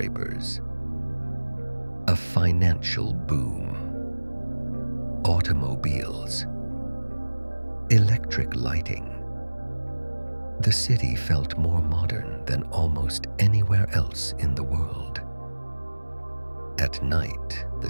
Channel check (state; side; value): inverted; both; correlation -1.00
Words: a financial boom, automobiles, electric lighting. The city felt more modern than almost anywhere else in the world. At night, the